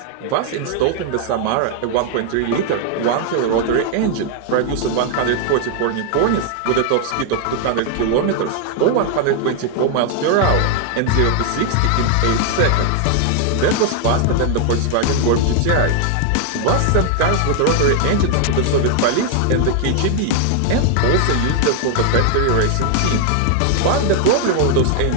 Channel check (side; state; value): both; different; correlation 0.00